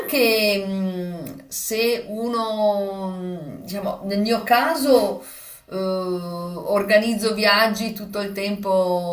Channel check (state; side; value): identical; both; correlation 1.00